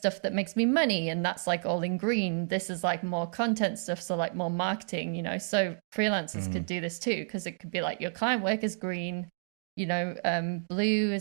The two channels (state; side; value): silent; left; digital silence